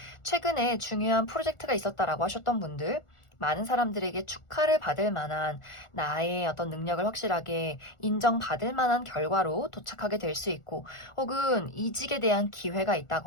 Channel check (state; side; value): late; right; 1.4 ms